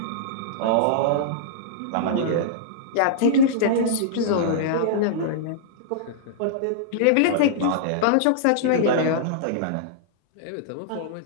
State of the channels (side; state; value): both; different; correlation -0.02